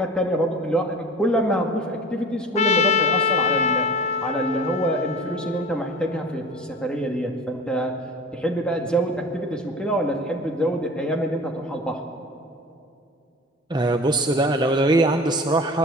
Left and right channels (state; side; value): normal; both; correlation 0.38